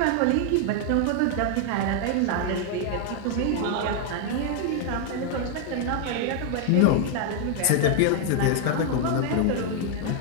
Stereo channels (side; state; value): both; different; correlation 0.00